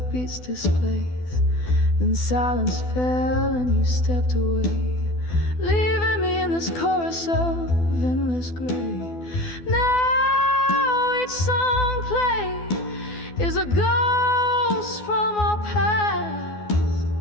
displaced. Then silence fell and you stepped away, leaving me in this chorus of endless gray. Now each song played is a ghost from our past,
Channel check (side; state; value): right; late; 12 ms